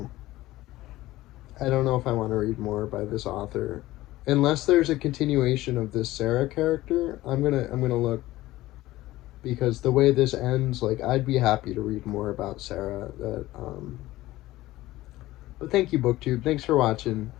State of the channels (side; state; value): right; quieter; 16.9 dB